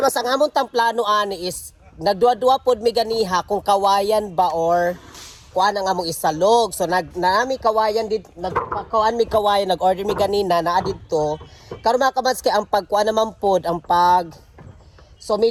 ang among tang plano ani is nagduwa-duwa pod mi ganiha kung kawayan ba or kuan ang among isalog. So nami kawayan did nagpakuan mi kawayan, nag-order mi ganina naa didto. Karon mga kabats kay ang pagkuan naman pod ang pag so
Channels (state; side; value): identical; both; correlation 1.00